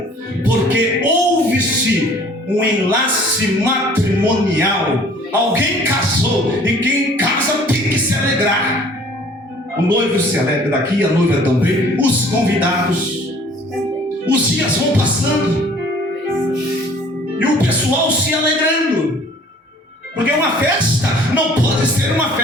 porque houve-se um enlace matrimonial. Alguém casou, e quem casa tem que se alegrar. O noivo se alegra daqui, a noiva também, os convidados. Os dias vão passando e o pessoal se alegrando. Porque uma festa não pode ser uma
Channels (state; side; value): normal; both; correlation 0.53